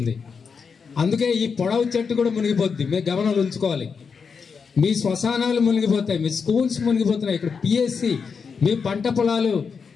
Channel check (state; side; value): quieter; right; 5.7 dB